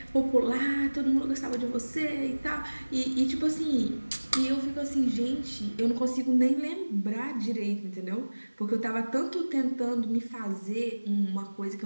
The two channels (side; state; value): both; inverted; correlation -1.00